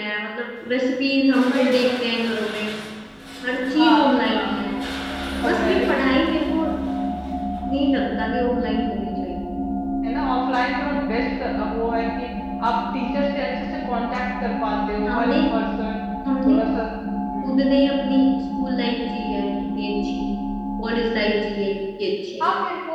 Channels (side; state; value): both; identical; correlation 1.00